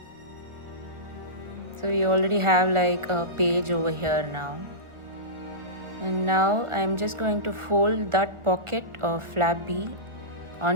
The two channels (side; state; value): left; late; 1.4 ms